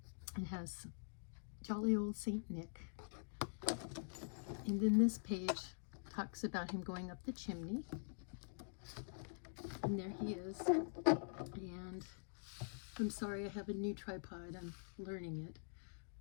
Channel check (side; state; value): right; silent; digital silence